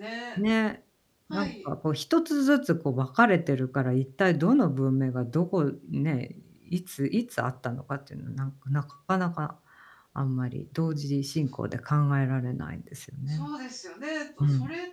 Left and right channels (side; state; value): both; identical; correlation 1.00